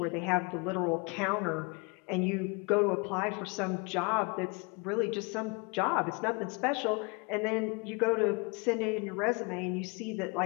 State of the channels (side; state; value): right; quieter; 30.8 dB